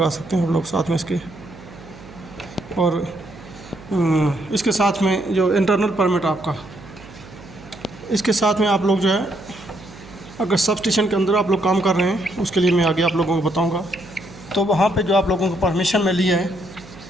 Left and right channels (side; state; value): right; noise; hum, 19 dB below the sound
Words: सकते हैं आप लोग साथ में इसके। और इसके साथ में जो इंटरनल परमिट आपका, इसके साथ में आप लोग जो है अगर सब स्टेशन के अंदर आप लोग काम कर रहे हैं, उसके लिए मैं आगे आप लोगों को बताऊंगा, तो वहाँ पे जो आप लोगों को परमिशन मिली है